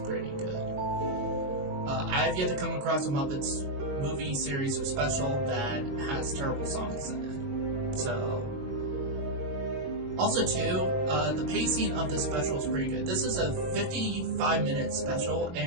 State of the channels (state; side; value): late; left; 22 ms